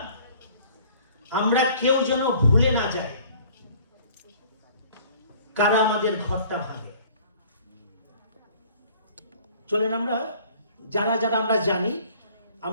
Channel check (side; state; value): both; inverted; correlation -0.53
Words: আমরা কেউ যেন ভুলে না যায় কারা আমাদের ঘরটা ভাঙে। চলেন আমরা যারা যারা আমরা জানি